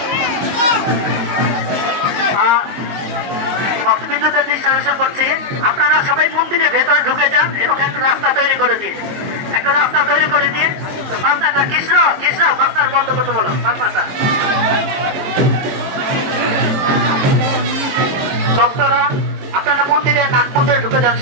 ভক্তবৃন্দদের দৃষ্টি আকর্ষণ করছি, আপনারা সবাই মন্দিরের ভেতরে ঢুকে যান। এরকম একটা রাস্তা তৈরি করে দিন। বাজনাটা কৃষ্ণ বাজনার বন্ধ করতে বলো। বাজনাটা ভক্তরা আপনারা মন্দিরে নাট মন্দিরে ঢুকে যান।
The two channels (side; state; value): left; late; 22 ms